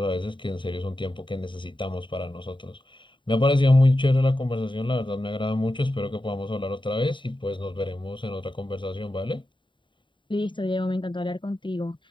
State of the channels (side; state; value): right; late; 0.23 ms